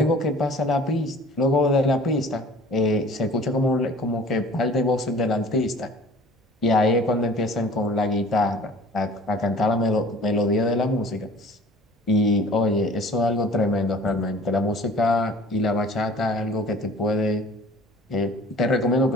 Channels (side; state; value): both; normal; correlation 0.47